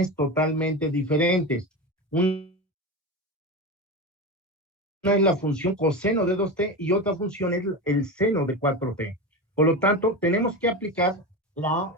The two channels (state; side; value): normal; both; correlation 0.22